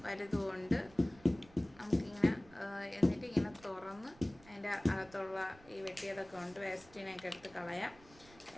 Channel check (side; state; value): right; noise; rumble, 23 dB below the sound